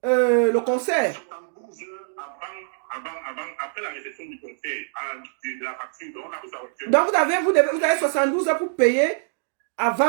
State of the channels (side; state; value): left; silent; 62 dB below the other